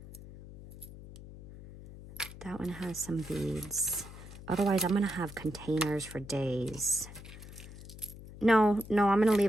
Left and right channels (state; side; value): noise; left; hum, 15 dB below the sound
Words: That one has some beads. Otherwise, I'm going to have containers for days. No, I'm going to